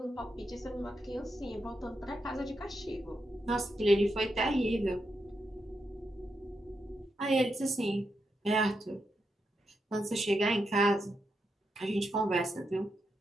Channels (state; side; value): normal; both; correlation 0.84